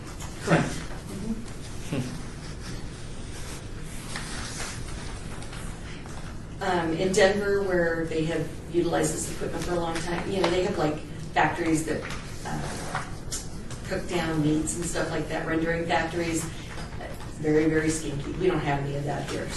Correct. In Denver, where they have utilized this equipment for a long time, they have like factories that cook down meats and stuff like that, rendering factories. Very, very stinky. We don't have any of that here.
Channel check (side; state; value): both; identical; correlation 1.00